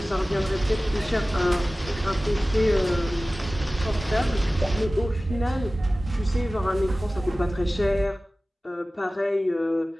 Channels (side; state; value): both; normal; correlation 0.97